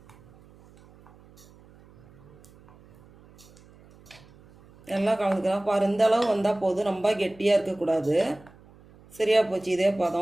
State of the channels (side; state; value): right; noise; hum, 25 dB below the sound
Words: எல்லாம் கலந்துக்கலாம். பாரு, இந்த அளவு வந்தால் போதும். ரொம்ப கெட்டியாக இருக்கக்கூடாது. சரியாக போச்சு. இதே